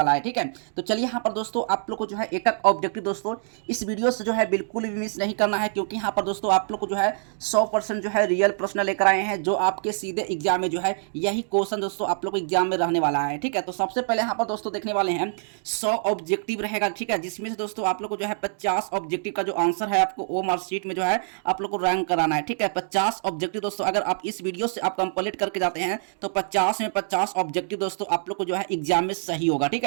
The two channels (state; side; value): silent; left; digital silence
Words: है। ठीक है, तो चलिए यहाँ पर दोस्तों आप लोग को जो है एक एक ऑब्जेक्टिव दोस्तों इस वीडियो से जो है बिल्कुल भी मिस नहीं करना है, क्योंकि यहाँ पर दोस्तों आप लोग को जो है 100% जो है रियल प्रश्न लेकर आए हैं जो आपके सीधे एग्जाम में जो है यही क्वेश्चन दोस्तों आप लोग को एग्जाम में रहने वाला है। ठीक है, तो सबसे पहले यहाँ पर दोस्तों देखने वाले हैं 100 ऑब्जेक्टिव रहेगा। ठीक है, जिसमें से दोस्तों आप लोग को जो है 50 ऑब्जेक्टिव का जो आंसर है आपको वो मार्कशीट में जो है आप लोग को रैंक कराना है। ठीक है, 50 ऑब्जेक्टिव दोस्तों अगर आप इस वीडियो से आप कंप्लीट करके जाते हैं तो 50 में 50 ऑब्जेक्टिव दोस्तों आप लोग को जो है एग्जाम में सही होगा। ठीक